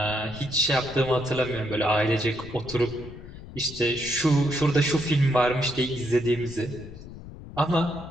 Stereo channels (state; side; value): noise; left; rumble, 15 dB below the sound